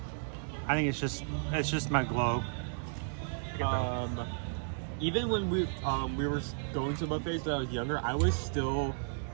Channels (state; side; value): silent; left; digital silence